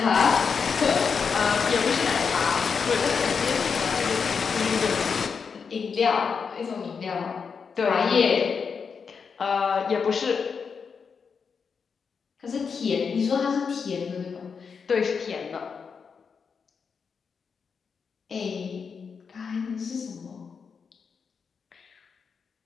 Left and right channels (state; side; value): quieter; right; 5.9 dB